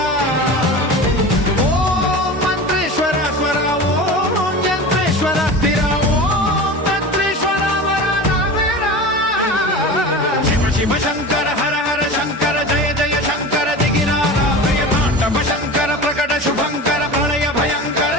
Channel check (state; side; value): normal; both; correlation 0.32